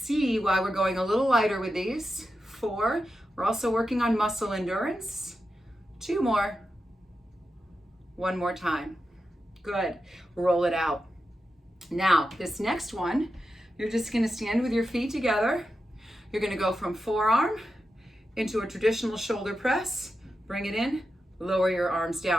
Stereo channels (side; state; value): both; normal; correlation 0.90